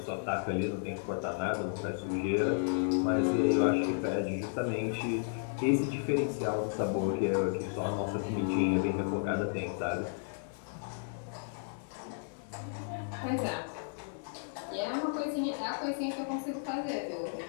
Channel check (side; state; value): right; silent; 56 dB below the other